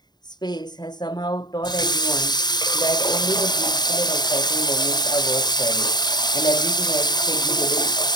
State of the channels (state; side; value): late; right; 0.20 ms